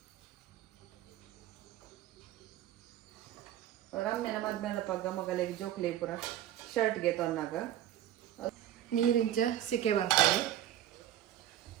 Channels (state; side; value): quieter; left; 12.0 dB